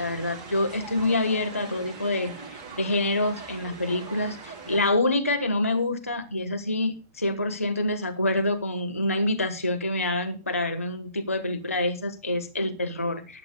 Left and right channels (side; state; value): both; inverted; correlation -0.63